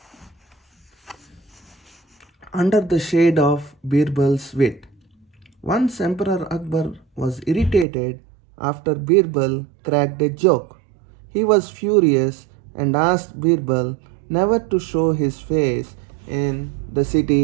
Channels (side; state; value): left; drops out; at 7.9 s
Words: Under the shade of Birbal's wit. Once Emperor Akbar was irritated after Birbal cracked a joke. He was furious and asked Birbal never to show his face in the